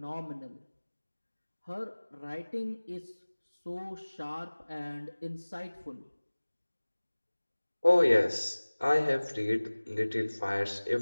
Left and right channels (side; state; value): both; inverted; correlation -1.00